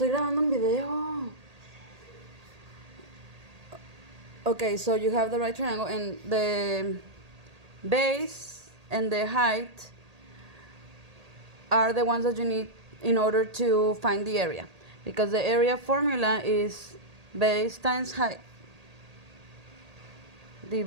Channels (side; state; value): left; late; 1.8 ms